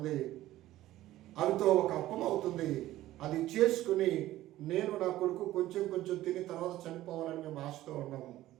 అవితో ఒక అప్పం అవుతుంది, అది చేసుకుని నేను నా కొడుకు కొంచెం కొంచెం తిని తర్వాత చనిపోవాలని మేము ఆశతో ఉన్నాము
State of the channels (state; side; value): quieter; left; 15.0 dB